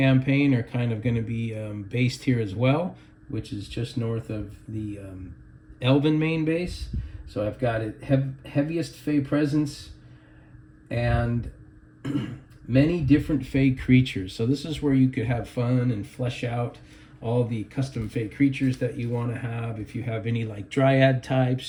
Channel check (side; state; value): both; identical; correlation 1.00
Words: are kind of going to be based here as well, which is just north of the Elven main base. So I've got it heaviest Fae presence and many different Fae creatures. So this is where you could have fun and flesh out all the custom Fae creatures that you want to have. If you have any like Dryad